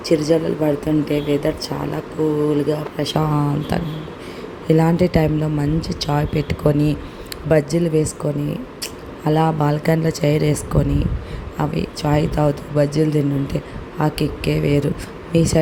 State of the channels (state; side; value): identical; both; correlation 1.00